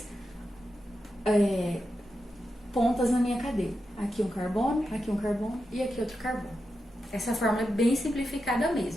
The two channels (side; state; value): both; normal; correlation 0.88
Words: pontas na minha cadeia. Aqui um carbono e aqui outro carbono. Essa fórmula é bem simplificada